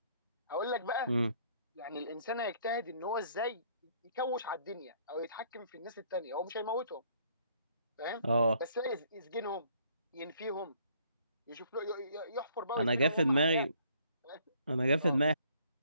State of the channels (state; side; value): inverted; both; correlation -0.63